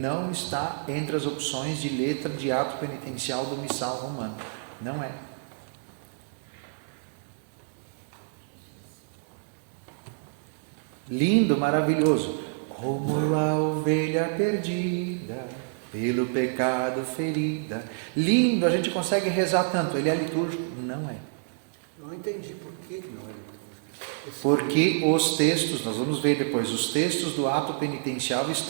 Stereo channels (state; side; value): silent; left; 59 dB below the other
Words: está entre as opções de letra de ato penitencial do missal romano, não é. Lindo, maravilhoso, como a ovelha perdida, pelo pecado ferida. Lindo, a gente consegue rezar tanto. Ele é litúrgico? Não é. Não entendi por que não é litúrgico. Porque os textos, nós vamos ver depois, os textos do ato penitencial